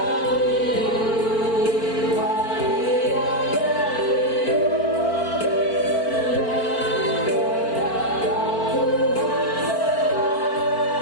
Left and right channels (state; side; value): late; right; 4.4 ms